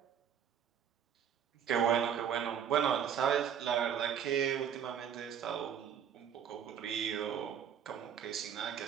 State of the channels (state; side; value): quieter; left; 8.5 dB